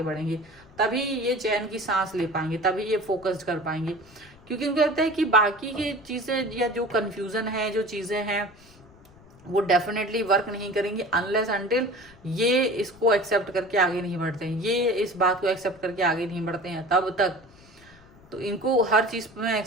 बढ़ेंगे, तभी ये चैन की सांस ले पाएंगे, तभी ये फोकस्ड कर पाएंगे। क्योंकि उनको लगता है कि बाकी की चीजें या जो कंफ्यूजन है, जो चीजें हैं वो डेफिनेटली वर्क नहीं करेंगी अनलेस अनटिल ये इसको एक्सेप्ट करके आगे नहीं बढ़ते हैं, ये इस बात को एक्सेप्ट करके आगे नहीं बढ़ते हैं, तब तक तो इनको हर चीज़ में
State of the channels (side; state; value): left; noise; rumble, 25 dB below the sound